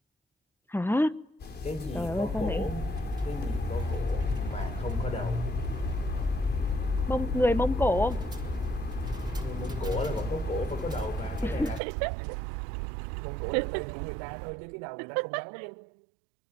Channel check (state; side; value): drops out; left; at 11.8 s